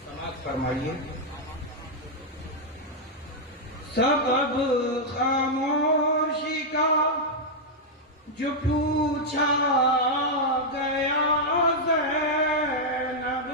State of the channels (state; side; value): normal; both; correlation -0.04